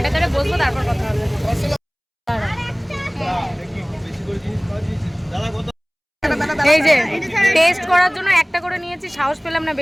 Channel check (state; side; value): identical; both; correlation 1.00